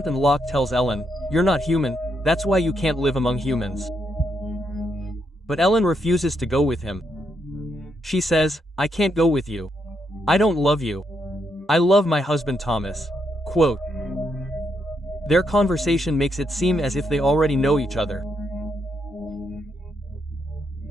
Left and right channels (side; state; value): both; normal; correlation 0.79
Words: and Locke tells Ellen, "You're not human, that's why you can't live among humans." But Ellen refuses to go with him. She says, "I can't go with you. I don't love you. I love my husband Thomas." Quote. Their conversation makes it seem as if they already know each other.